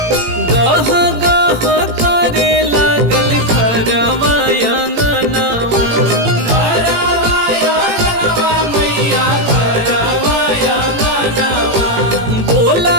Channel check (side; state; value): left; late; 18 ms